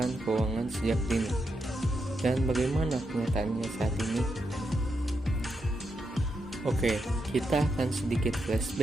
keuangan sejak dini dan bagaimana kenyataannya saat ini. Oke, kita akan sedikit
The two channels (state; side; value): normal; both; correlation 0.84